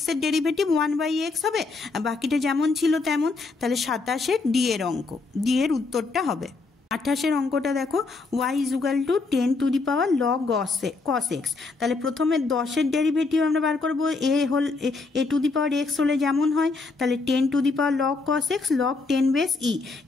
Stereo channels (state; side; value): quieter; right; 3.9 dB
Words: এর ডেরিভেটিভ 1/x হবে, আর বাকিটা যেমন ছিল তেমন। তাহলে 27-এর ডি এর অঙ্ক, ডি এর উত্তরটা হবে। 28-এর অঙ্কটা দেখো, y equal two 10 to the power log cos x. তাহলে প্রথমে 10-এর ডেরিভেটিভ আমরা বার করবো, এ টু দি পাওয়ার এক্স হলে যেমন হয়, তাহলে 10 to the power log cos x log 10 base e.